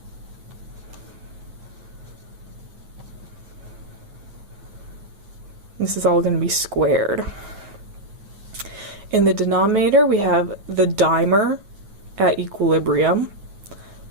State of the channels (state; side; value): late; left; 9.3 ms